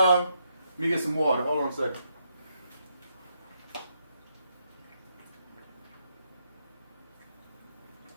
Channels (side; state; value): both; inverted; correlation -0.78